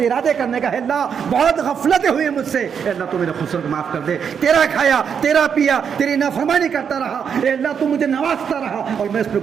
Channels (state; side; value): quieter; left; 7.2 dB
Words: ارادے کرنے کا ہے. اللہ بہت غفلتیں ہوئی مجھ سے، اے اللہ تو میرے قصور کو معاف کر دے. تیرا کھایا، تیرا پیا، تیری نافرمانی کرتا رہا، اے اللہ تو مجھے نوازتا رہا اور میں اس پہ